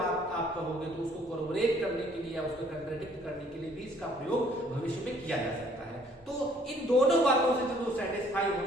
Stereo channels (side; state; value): both; normal; correlation 0.61